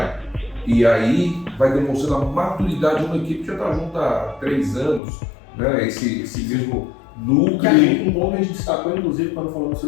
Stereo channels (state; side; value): drops out; right; at 5.0 s